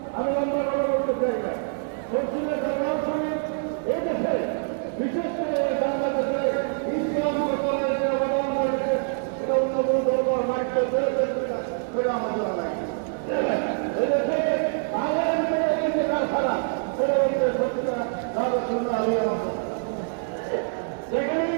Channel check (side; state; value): left; silent; digital silence